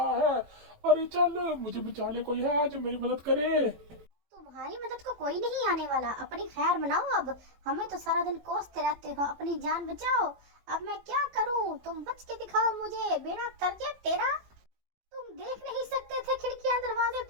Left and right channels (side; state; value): left; late; 18 ms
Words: है। अरे चल, मुझे बचा ले, कोई है जो मेरी मदद करे। तुम्हारी मदद को कोई नहीं आने वाला, अपनी खैर मनाओ अब। हमें तो सारा दिन कोसते रहते हो, अपनी जान बचाओ। अब मैं क्या करूं, तुम बच के दिखाओ मुझे, बेड़ा तरजे तेरा। तुम देख नहीं सकते थे खिड़कियां दरवाजे,